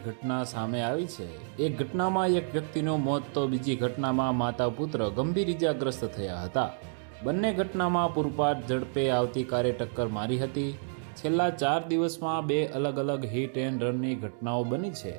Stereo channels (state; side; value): silent; left; digital silence